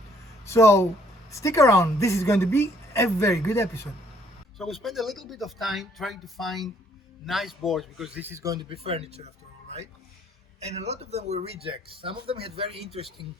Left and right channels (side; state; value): both; normal; correlation 0.64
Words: So stick around, this is going to be a very good episode. So we spent a little bit of time trying to find nice boards, because this is going to be furniture after all, right? And a lot of them were rejects. Some of them had very interesting